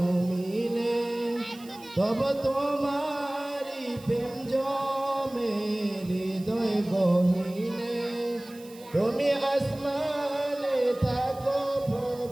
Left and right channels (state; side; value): noise; right; hiss, 22 dB below the sound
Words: তব তোমারি প্রেম জমে হৃদয় গহীনে। তুমি আসমানে থাকো